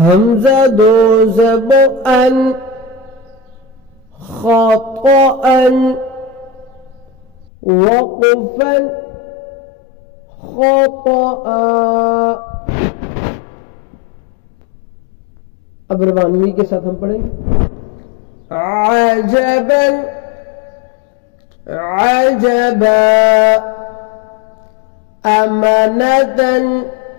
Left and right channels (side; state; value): right; drops out; at 7.5 s